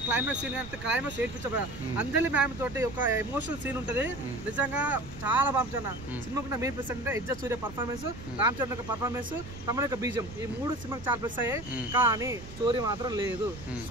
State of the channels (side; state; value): right; noise; rumble, 15 dB below the sound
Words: క్లైమాక్స్ సీన్ కానీ, క్లైమాక్స్ ఏడ్పించబోయా. అంజలి మ్యామ్ తోటి ఒక ఎమోషనల్ సీన్ ఉంటది. నిజంగా చాలా బాగుంటుంది. సినిమాకు మెయిన్ ప్లస్ అంటే ఎజ్జ సూర్య పర్ఫార్మెన్స్, రామ్ చరణ్ యొక్క పర్ఫార్మెన్స్, తమ యొక్క బీజం, ఈ 3 సినిమాకి చాలా ప్లస్ అయ్యాయి. కానీ స్టోరీ మాత్రం లేదు.